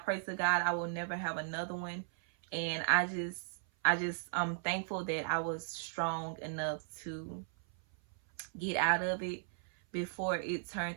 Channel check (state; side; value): silent; left; 53 dB below the other